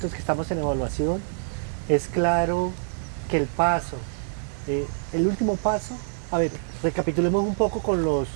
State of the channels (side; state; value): left; silent; digital silence